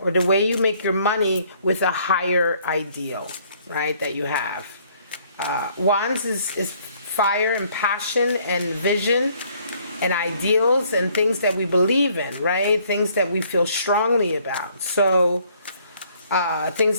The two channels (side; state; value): both; inverted; correlation -0.63